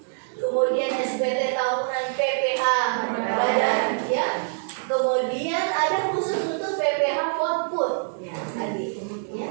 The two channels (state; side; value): silent; left; 62 dB below the other